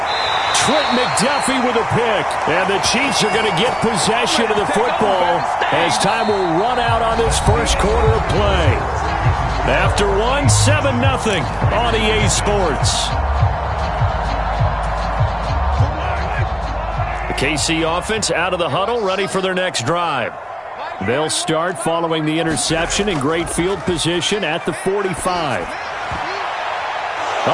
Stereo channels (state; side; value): identical; both; correlation 1.00